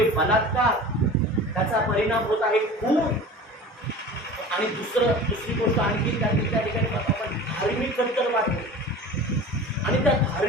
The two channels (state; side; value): normal; both; correlation 0.38